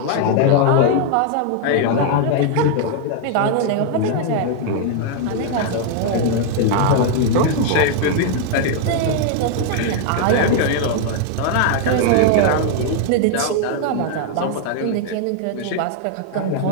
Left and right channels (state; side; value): different; both; correlation 0.00